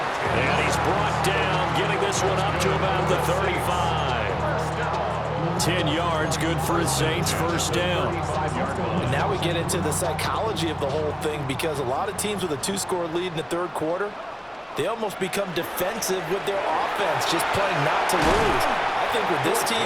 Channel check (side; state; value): both; identical; correlation 1.00